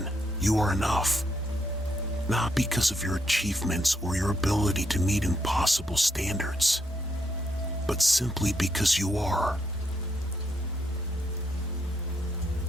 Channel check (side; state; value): both; normal; correlation 0.76